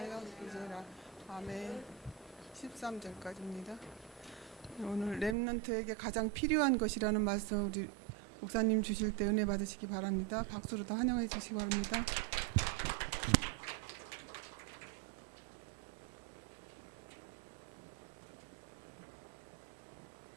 기지라. 아멘. 13절까지입니다. 오늘 렘넌트에게 가장 필요한 것이라는 말씀 우리 목사님 주실 때 은혜 받으시기 바랍니다. 박수로 더 환영해 주시기 바랍니다.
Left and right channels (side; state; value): left; drops out; at 5.4 s